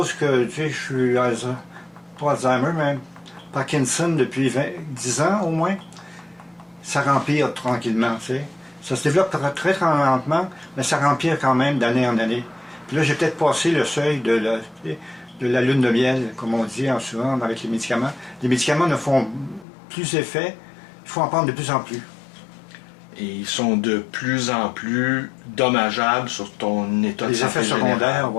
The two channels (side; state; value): right; drops out; at 19.7 s